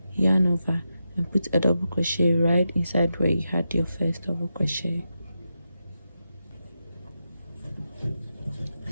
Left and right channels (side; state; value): both; inverted; correlation -0.88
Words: yarn over and put a double crochet right inside where you had your first double crochet.